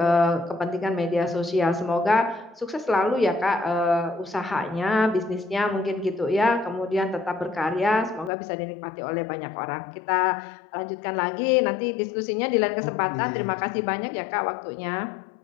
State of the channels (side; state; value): right; drops out; at 8.3 s